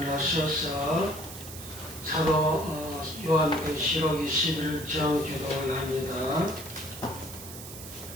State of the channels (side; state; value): right; noise; hiss, 12 dB below the sound